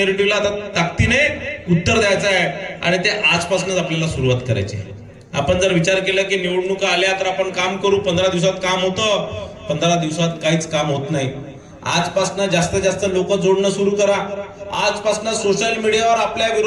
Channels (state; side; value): identical; both; correlation 1.00